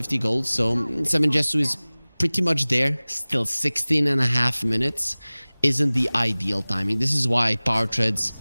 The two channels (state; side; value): inverted; both; correlation -1.00